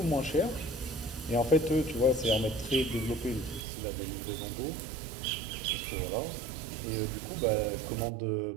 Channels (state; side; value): drops out; left; at 3.7 s